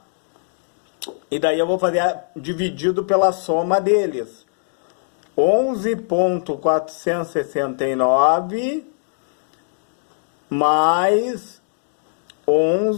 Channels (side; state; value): right; silent; digital silence